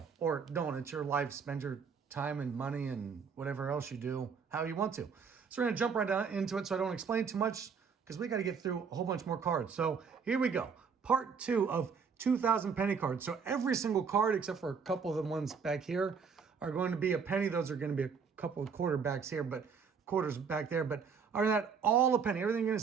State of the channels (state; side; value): quieter; left; 6.0 dB